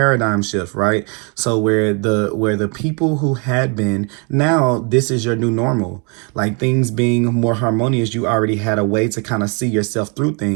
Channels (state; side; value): quieter; left; 34.4 dB